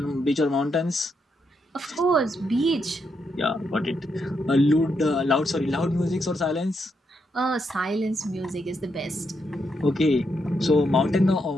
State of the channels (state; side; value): normal; both; correlation 0.80